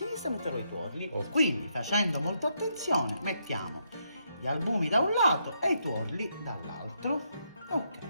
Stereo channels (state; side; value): inverted; both; correlation -0.78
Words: metterò i tuorli. Ok. Quindi, facendo molta attenzione, mettiamo gli albumi da un lato e i tuorli dall'altro.